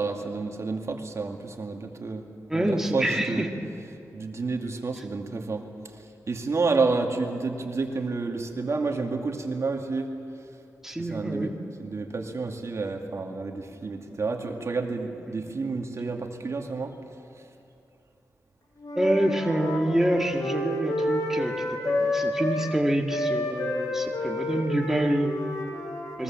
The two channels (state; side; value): normal; both; correlation 0.86